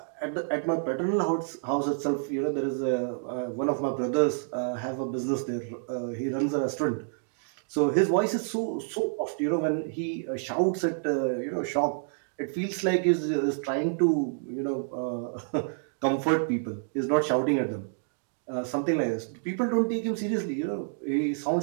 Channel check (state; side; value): silent; left; digital silence